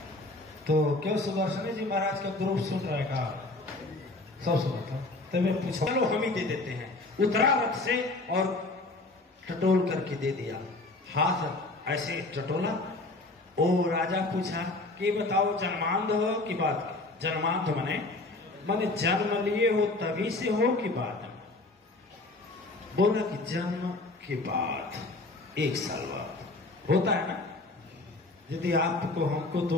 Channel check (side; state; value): right; quieter; 3.0 dB